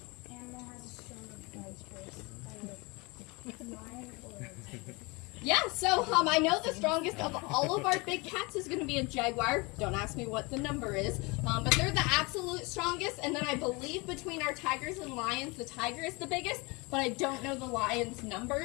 animal has a stronger bite first? Lion or tiger? Yeah, so I know the strongest of all of our big cats is going to be a jaguar. Don't ask me what the number is, but they're the absolute strongest. And then I believe between our tigers and lions, the tiger is the biggest, but I don't know the lion's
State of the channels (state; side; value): quieter; right; 26.8 dB